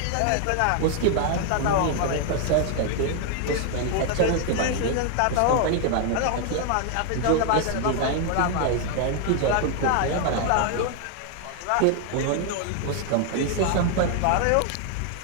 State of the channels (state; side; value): different; both; correlation 0.00